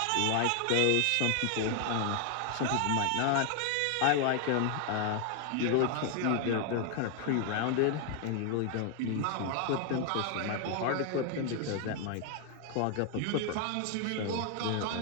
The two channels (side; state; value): both; different; correlation 0.00